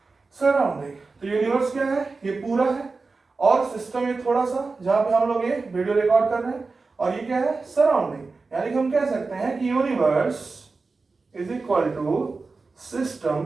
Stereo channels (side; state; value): left; quieter; 4.0 dB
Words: Surrounding. तो universe क्या है? ये पूरा है। और सिस्टम ये थोड़ा सा, जहां पे हम लोग ये वीडियो रिकॉर्ड कर रहे हैं। और ये क्या है? सराउंडिंग। यानी कि हम कह सकते हैं कि universe is equal to